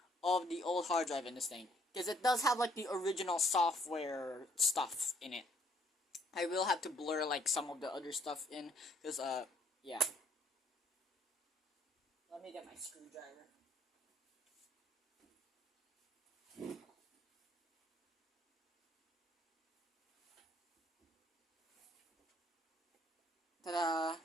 of the old hard drive in this thing, because it does have like the original software stuff in it. I will have to blur like some of the other stuff in, because yeah. Let me get my screwdriver. Ta-da!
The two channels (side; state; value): both; normal; correlation 0.65